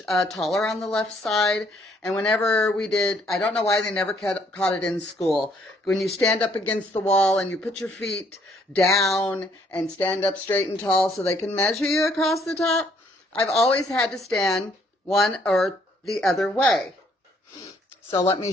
taller on the left side. And whenever we did, I don't know why they never caught it in school. When you stand up against the wall and you put your feet down and stand up straight and tall so they can measure you across the top, I've always had to stand one or the other way. So let me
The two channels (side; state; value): both; normal; correlation 0.66